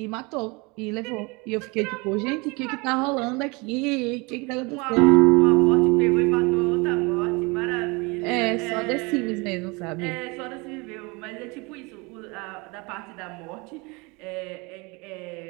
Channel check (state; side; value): quieter; left; 27.3 dB